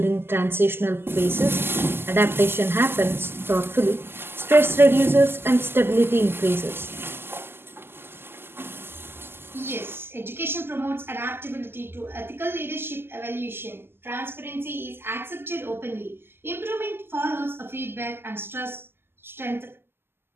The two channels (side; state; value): left; late; 0.11 ms